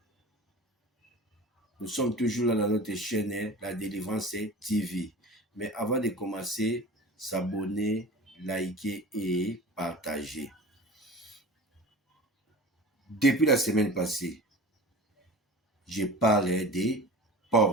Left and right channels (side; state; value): both; normal; correlation 0.37